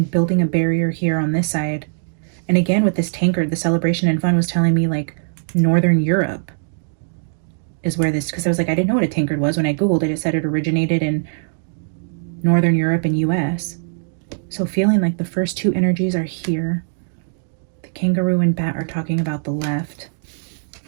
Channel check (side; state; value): left; silent; digital silence